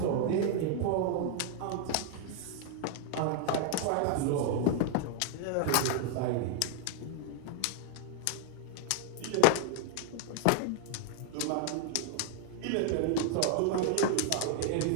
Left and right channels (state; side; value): different; both; correlation -0.01